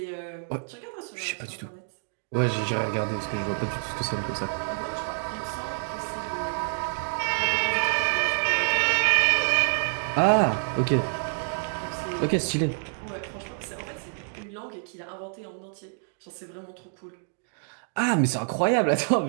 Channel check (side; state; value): left; silent; 60 dB below the other